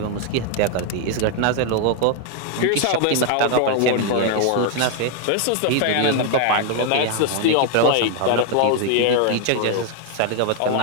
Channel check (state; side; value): different; both; correlation 0.00